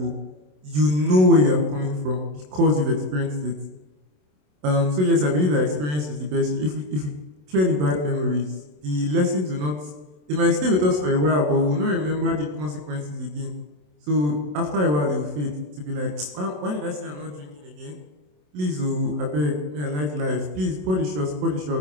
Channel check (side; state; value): left; late; 27 ms